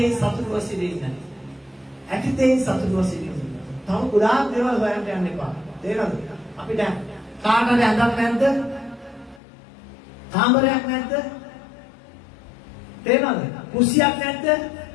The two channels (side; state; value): right; drops out; at 9.4 s